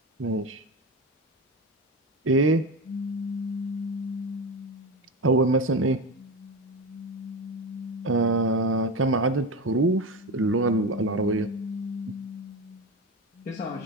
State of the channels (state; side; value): normal; both; correlation 0.20